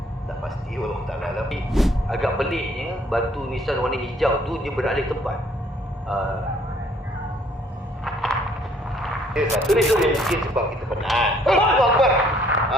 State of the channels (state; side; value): normal; both; correlation 0.63